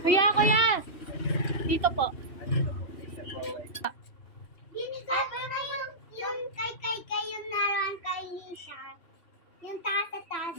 Kuya! Dito po. Binigay ko na yung kay yung naroon kay Nisha. Yung taas.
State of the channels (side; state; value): right; late; 2.8 ms